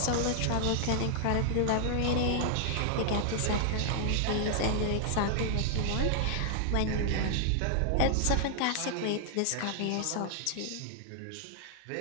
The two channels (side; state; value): both; different; correlation 0.00